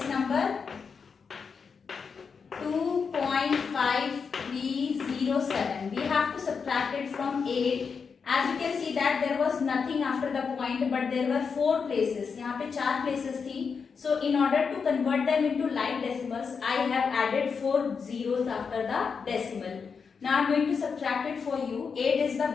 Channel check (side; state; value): right; quieter; 5.7 dB